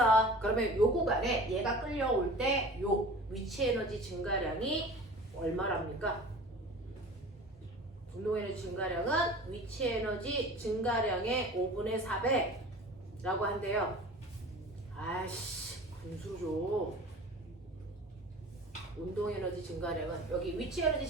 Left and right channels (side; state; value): both; normal; correlation 0.40